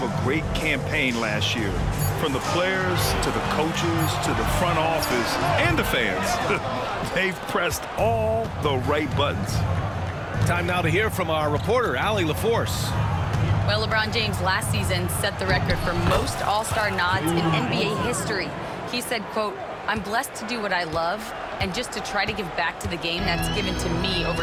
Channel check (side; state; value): both; identical; correlation 1.00